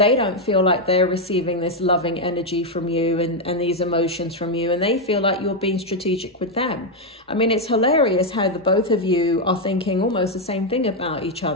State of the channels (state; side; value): normal; both; correlation 0.02